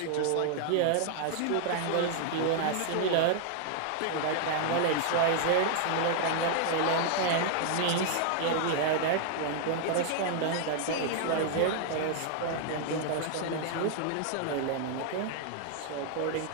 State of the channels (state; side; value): different; both; correlation 0.00